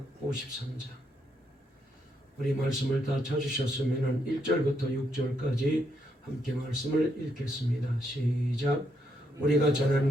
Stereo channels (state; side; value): normal; both; correlation 0.77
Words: 53장. 우리 말씀을 다 찾으셨으면 1절부터 6절까지 함께 말씀을 읽겠습니다. 시작. 우리가 전한